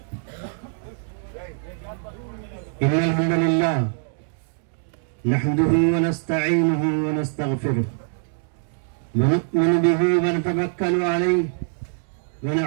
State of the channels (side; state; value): left; silent; 63 dB below the other